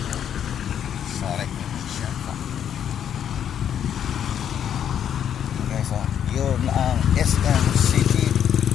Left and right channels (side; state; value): right; quieter; 9.2 dB